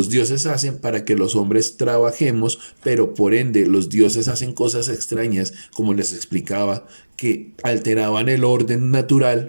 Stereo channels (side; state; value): both; inverted; correlation -1.00